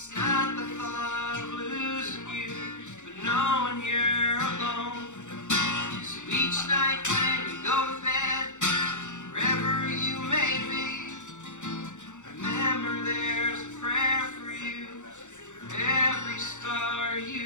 not the thought of losing you, but knowing you're alone. So each night when you go to bed, wherever you may be, remember there's a prayer for you, for every star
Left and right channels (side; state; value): right; late; 0.85 ms